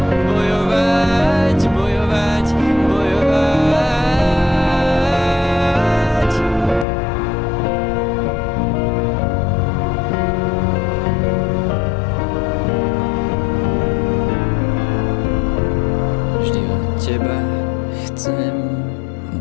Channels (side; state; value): right; drops out; at 6.9 s